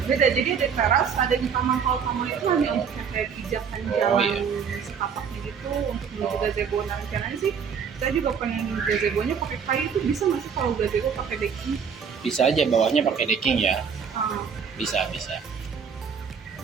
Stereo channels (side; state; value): left; quieter; 6.7 dB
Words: Beda, jadi ada teras, ada di taman. Kalau taman itu hanya untuk yang kayak pijakan jalan setapaknya gitu untuk menuju gazebo. Nah rencananya sih saya juga pengen gazebonya pakai kayu, itu bisa nggak sih kalau gazebo pakai decking? Bisa aja bawahnya pakai decking ya. Bisa.